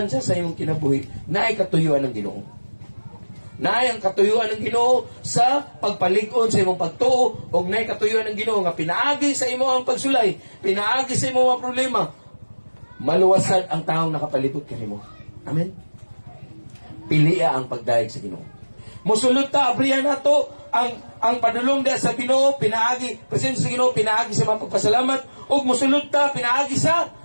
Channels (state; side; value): inverted; both; correlation -1.00